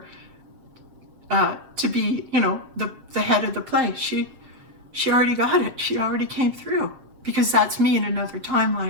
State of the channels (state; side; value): late; left; 7.5 ms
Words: to be, the head of the play. She already got it. She already came through, because that's me in another